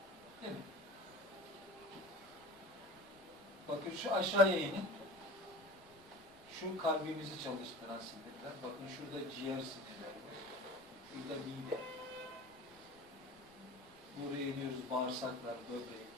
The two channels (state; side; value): noise; left; rumble, 28 dB below the sound